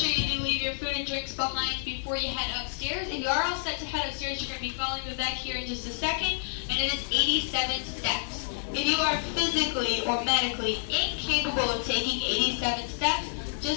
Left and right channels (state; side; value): silent; right; 59 dB below the other